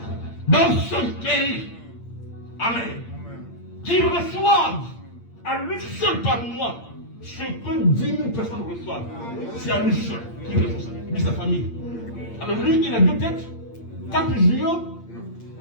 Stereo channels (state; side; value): late; right; 8.7 ms